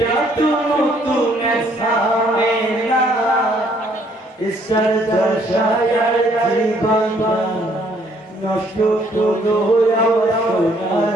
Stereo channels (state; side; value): normal; both; correlation 0.65